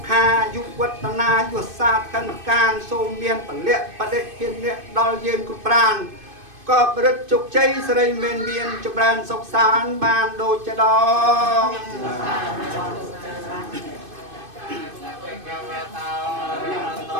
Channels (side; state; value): left; late; 2.5 ms